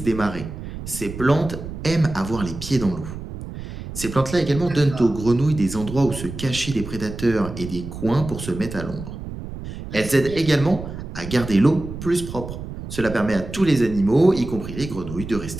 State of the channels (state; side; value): noise; right; rumble, 10 dB below the sound